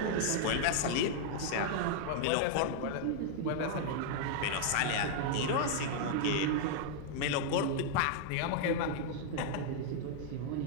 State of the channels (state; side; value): different; both; correlation -0.01